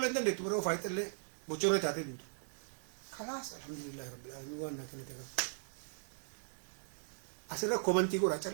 leen dandeettu biroo faayitallee bocorree taatee dhumtu kalaas alhamdulillah rabbil alamin waan naa kennite kan asirra komantii godha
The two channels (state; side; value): silent; left; digital silence